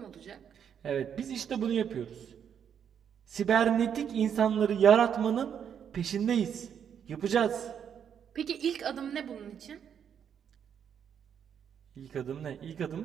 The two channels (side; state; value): left; quieter; 8.2 dB